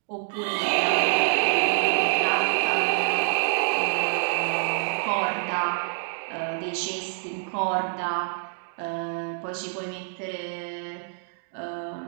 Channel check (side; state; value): left; silent; digital silence